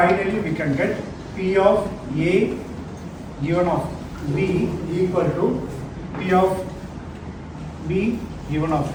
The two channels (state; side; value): identical; both; correlation 1.00